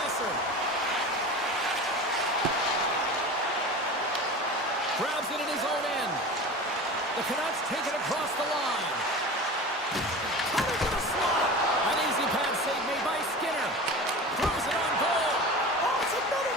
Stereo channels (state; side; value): normal; both; correlation 0.33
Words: Grabs it in his own end. The Canucks take it across the line. Cutting to the slot. An easy pad save made by Skinner. Throws it on goal. Oh, it's another